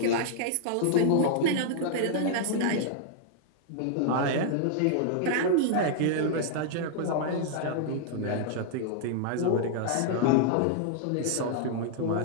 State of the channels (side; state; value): both; different; correlation -0.01